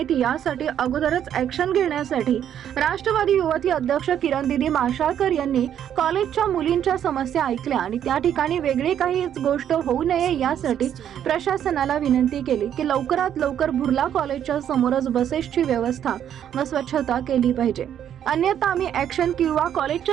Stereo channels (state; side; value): quieter; left; 9.8 dB